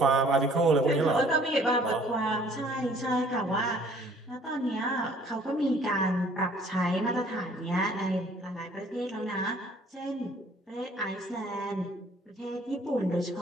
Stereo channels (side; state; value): both; normal; correlation 0.57